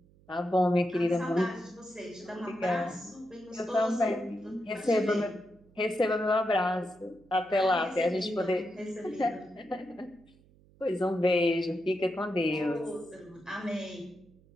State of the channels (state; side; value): noise; right; hum, 28 dB below the sound